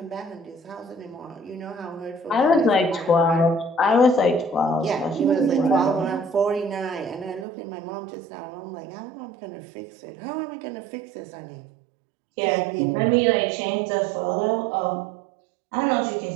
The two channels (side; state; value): left; drops out; at 7.5 s